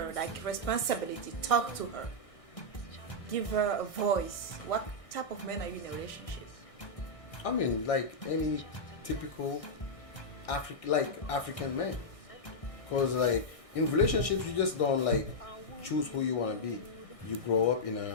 like responsibility, talk to her, give her a voice? What type of man are you in a relationship? I mean, like any typical African man. Cause like in relationships, you just don't like choose who you want to be. You grow up in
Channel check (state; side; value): late; right; 1.6 ms